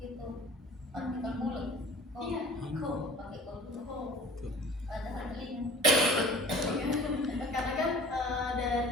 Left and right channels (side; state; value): both; normal; correlation 0.45